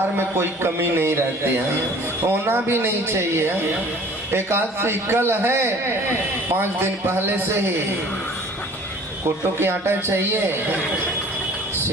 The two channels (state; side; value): normal; both; correlation 0.49